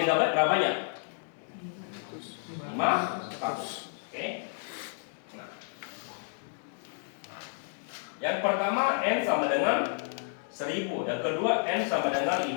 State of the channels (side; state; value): right; silent; digital silence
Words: berapa banyak? 500. Oke. Nah. Yang pertama N sama dengan 1000, yang kedua N sama dengan